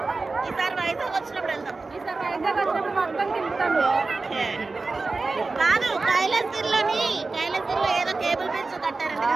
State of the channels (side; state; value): left; quieter; 3.7 dB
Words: ఈసారి వైజాగ్ వచ్చినప్పుడు వెళ్దాం. ఓకే. కాదు, కైలాసగిరిలో ఏదో కేబుల్ బ్రిడ్జ్ కట్టారంట